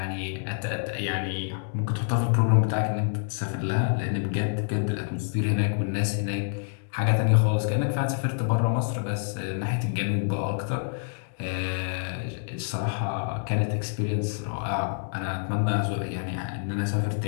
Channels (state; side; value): silent; right; digital silence